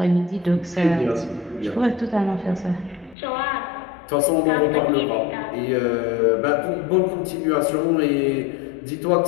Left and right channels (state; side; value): drops out; right; at 3.2 s